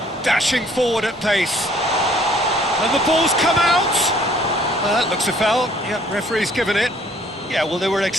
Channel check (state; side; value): normal; both; correlation 0.60